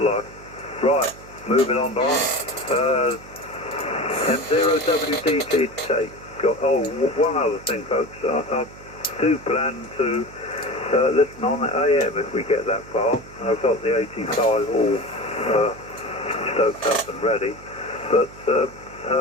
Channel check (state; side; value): noise; right; hum, 19 dB below the sound